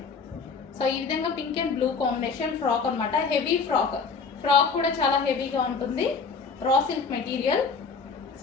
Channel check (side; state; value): right; quieter; 5.0 dB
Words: So ఈ విధంగా pink and blue combination frock అనమాట. హెవీ ఫ్రాక్ కూడా చాలా హెవీగా ఉంటుంది. Raw silk material.